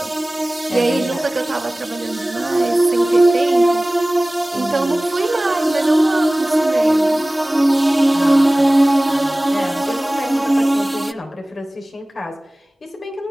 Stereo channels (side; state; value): both; normal; correlation 0.98